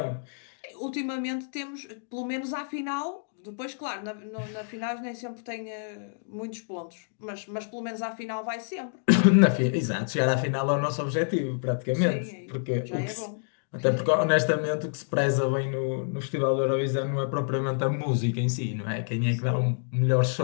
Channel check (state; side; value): silent; right; digital silence